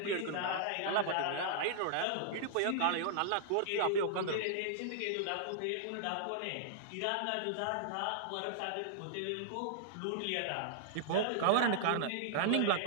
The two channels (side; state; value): both; different; correlation -0.01